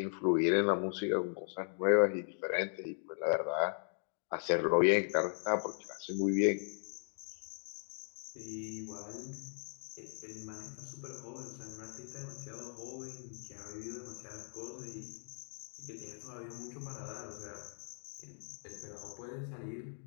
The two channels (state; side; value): silent; right; digital silence